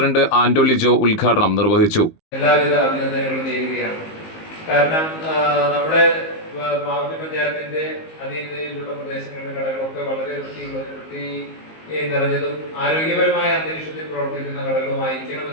ആന്റോ ലിജോ ഉദ്ഘാടനം നിർവഹിച്ചു. എല്ലാവിധ അഭിനന്ദനങ്ങളും നേരുകയാണ്. കാരണം നമ്മുടെ പാവർട്ടി പഞ്ചായത്തിന്റെ അധീനതയിലുള്ള പ്രദേശങ്ങളിലെ കടകളൊക്കെ വളരെ വൃത്തി നിറഞ്ഞതും ആരോഗ്യപരമായ അന്തരീക്ഷത്തിൽ പ്രവർത്തിക്കുന്ന ഘടകമായിരിക്കണം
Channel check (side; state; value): right; late; 19 ms